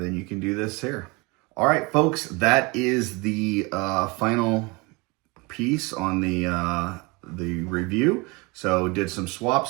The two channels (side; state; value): left; quieter; 26.5 dB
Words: you can do this here. All right, folks, that is the final piece on the review. So did some